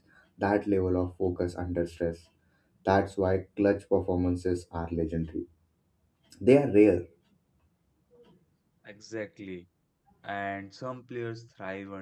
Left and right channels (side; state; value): both; identical; correlation 1.00